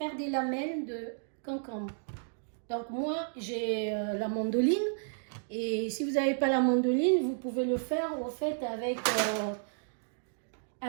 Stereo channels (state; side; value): silent; left; digital silence